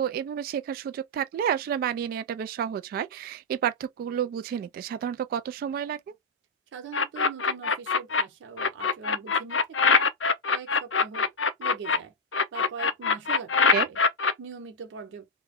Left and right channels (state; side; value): normal; both; correlation -0.05